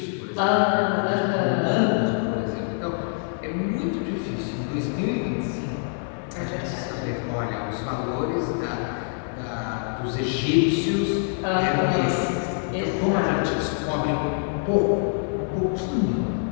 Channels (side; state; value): right; silent; 62 dB below the other